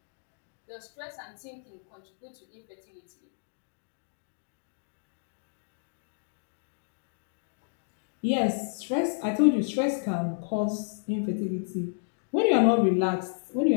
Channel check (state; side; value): silent; right; digital silence